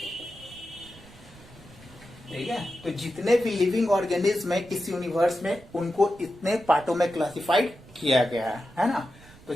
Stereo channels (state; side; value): noise; right; rumble, 22 dB below the sound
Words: ठीक है, तो जितने भी लिविंग ऑर्गेनिज्म है इस यूनिवर्स में, उनको इतने पार्टों में क्लासिफाइड किया गया है ना। तो